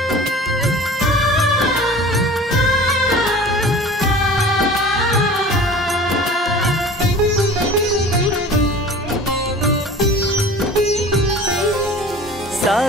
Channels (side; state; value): both; normal; correlation 0.41